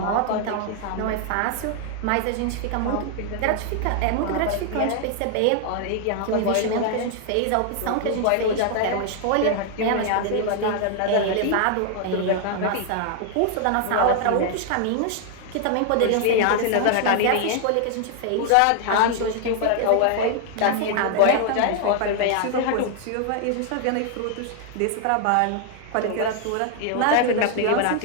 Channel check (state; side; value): different; both; correlation 0.00